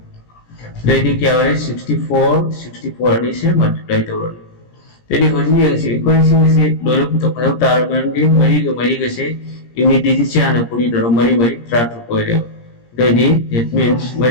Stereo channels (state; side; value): late; right; 17 ms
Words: लेडी क्या हो रहा है 64 अनि से मल्टीप्लाई दो तेरी होनी है से इक्वेशन से दोनों तो पता तार बनेंगे मरी के से यूनिट डिजिट से आना पूरी तरह मरी ट्राट को है देदी that means